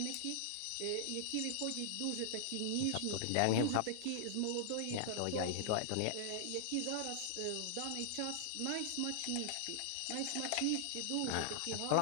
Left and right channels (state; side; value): different; both; correlation -0.01